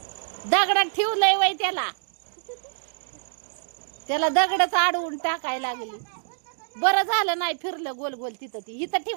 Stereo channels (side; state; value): left; silent; digital silence